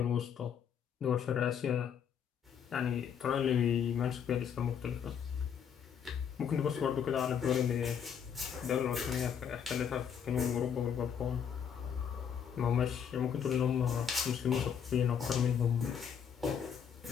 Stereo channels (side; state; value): right; quieter; 7.8 dB